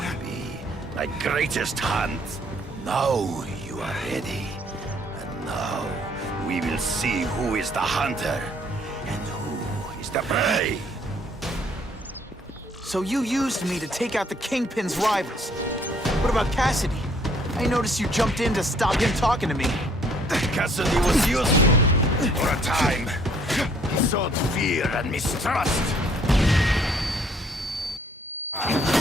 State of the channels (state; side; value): normal; both; correlation 0.62